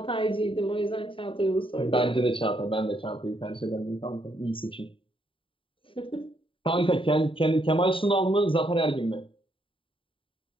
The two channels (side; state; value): right; late; 0.25 ms